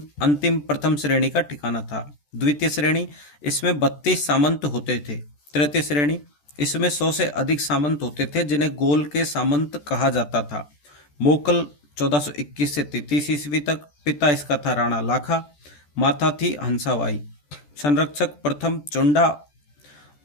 अंतिम प्रथम श्रेणी का ठिकाना था। द्वितीय श्रेणी, इसमें 32 सामंत होते थे। तृतीय श्रेणी, इसमें 100 से अधिक सामंत होते थे, जिन्हें गोल के सामंत कहा जाता था। मोकल 1421 से 33 ईस्वी तक। पिता इसका था राणा लाखा, माता थी हंसाबाई। संरक्षक प्रथम चुंडा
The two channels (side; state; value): right; late; 14 ms